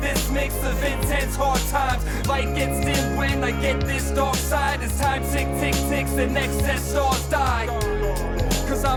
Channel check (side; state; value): both; identical; correlation 1.00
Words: this mix of intense hard times. Light gets dim when I get this dark side. As time tick, tick, ticks and excess stars die. Cause